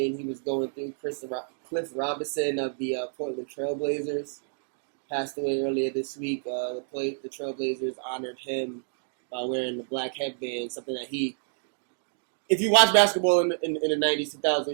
he was going through. Cliff Robinson of the Portland Trailblazers passed away earlier this week. The Trailblazers honored him by wearing the black headband, something that he. If you watch basketball in the 90s,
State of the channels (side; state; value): left; silent; digital silence